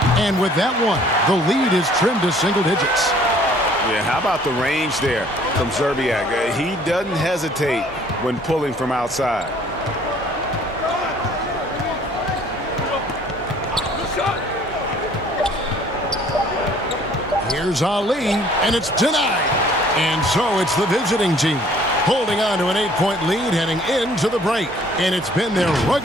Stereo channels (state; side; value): normal; both; correlation 0.57